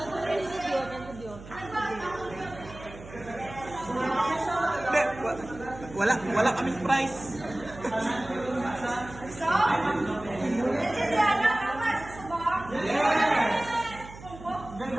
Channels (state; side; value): noise; right; hum, 16 dB below the sound